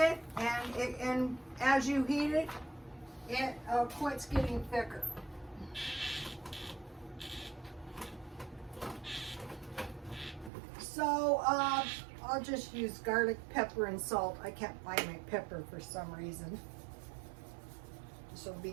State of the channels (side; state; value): left; drops out; at 10.5 s